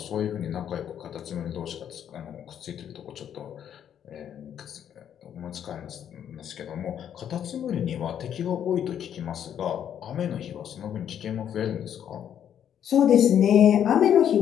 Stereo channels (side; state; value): right; quieter; 9.4 dB